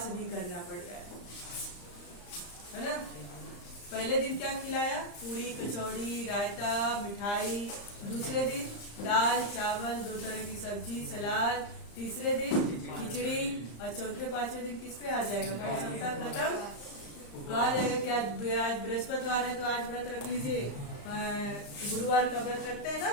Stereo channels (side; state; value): right; late; 34 ms